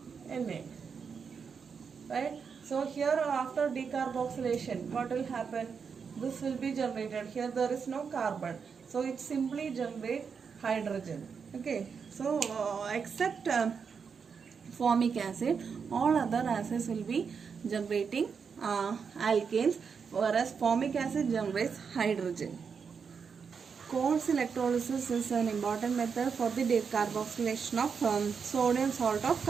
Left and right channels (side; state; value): left; quieter; 6.1 dB